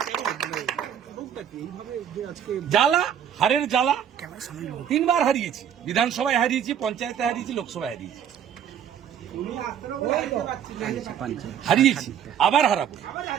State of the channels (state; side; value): quieter; left; 9.1 dB